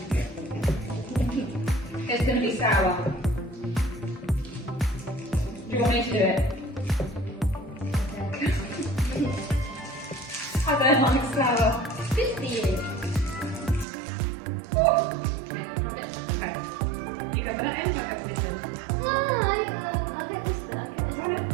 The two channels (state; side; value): drops out; left; at 13.9 s